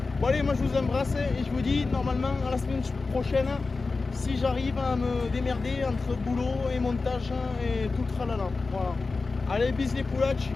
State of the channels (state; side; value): quieter; right; 4.0 dB